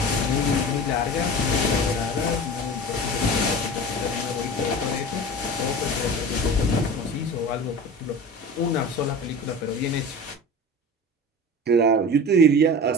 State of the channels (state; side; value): normal; both; correlation 0.34